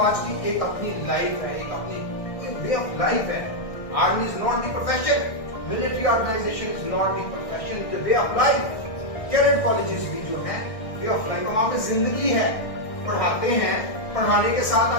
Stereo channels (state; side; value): late; right; 1.6 ms